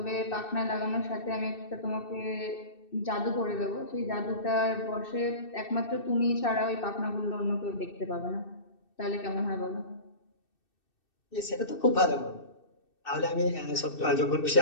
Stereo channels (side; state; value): right; late; 2.6 ms